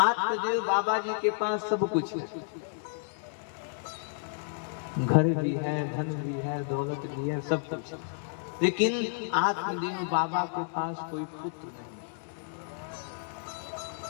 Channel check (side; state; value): right; silent; digital silence